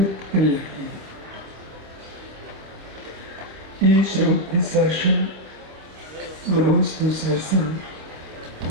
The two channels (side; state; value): left; late; 26 ms